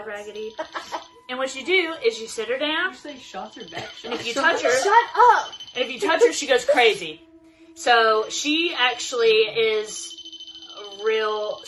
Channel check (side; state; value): both; identical; correlation 1.00